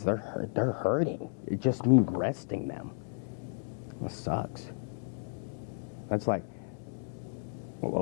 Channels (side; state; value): right; silent; digital silence